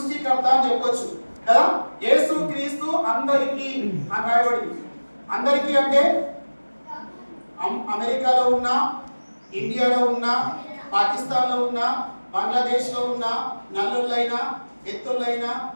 అని చెప్పొచ్చు కదా. యేసు క్రీస్తు అందరికీ అని రాయబడింది. అందరికీ అంటే అమెరికాలో ఉన్న, ఇండియాలో ఉన్న, పాకిస్తాన్లో ఉన్న, బంగ్లాదేశ్లో ఉన్న, నల్లులైనా ఎత్తులైనా,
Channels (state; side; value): inverted; both; correlation -1.00